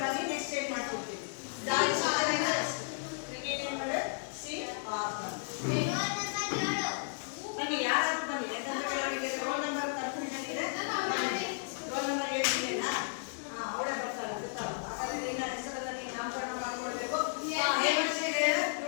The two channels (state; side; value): silent; right; digital silence